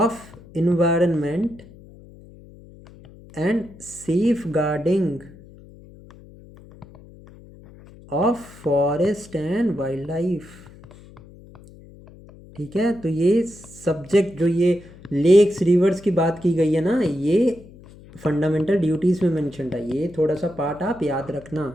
environment and safeguarding of forest and wildlife. ठीक है. तो ये सब्जेक्ट जो ये लेक्स रिवर्स की बात की गई है ना, ये फंडामेंटल ड्यूटीज़ में मेंशन है. ये थोड़ा सा पार्ट आप याद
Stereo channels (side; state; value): left; noise; hum, 21 dB below the sound